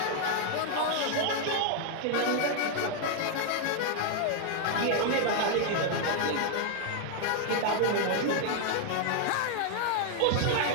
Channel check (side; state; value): both; different; correlation 0.00